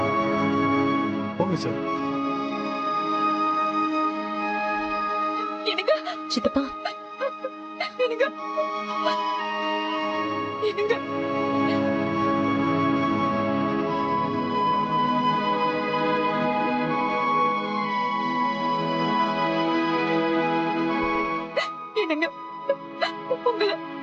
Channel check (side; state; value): both; identical; correlation 1.00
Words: போங்க சார். சித்தப்பா, என்னங்க, உங்களை